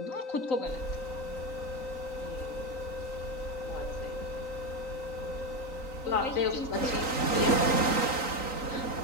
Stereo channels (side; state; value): right; late; 3.9 ms